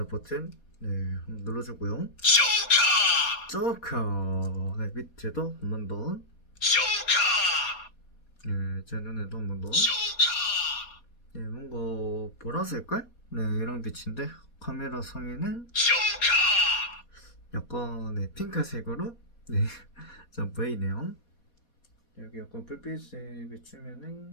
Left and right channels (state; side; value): late; right; 4.2 ms